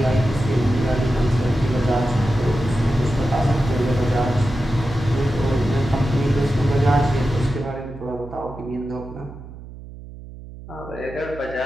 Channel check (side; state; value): right; noise; hum, 15 dB below the sound